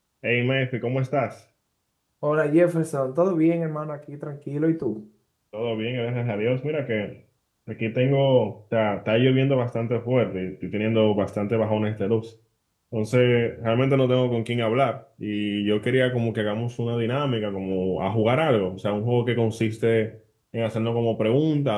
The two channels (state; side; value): identical; both; correlation 1.00